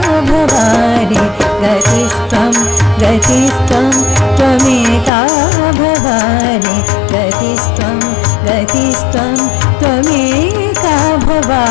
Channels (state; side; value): drops out; right; at 5.1 s